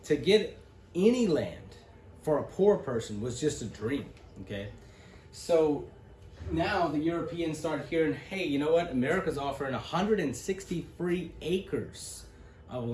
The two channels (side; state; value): both; identical; correlation 1.00